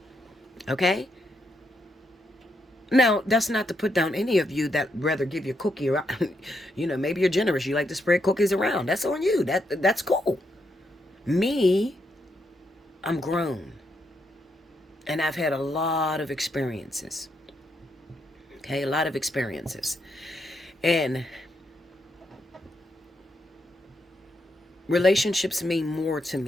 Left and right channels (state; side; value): normal; both; correlation 0.80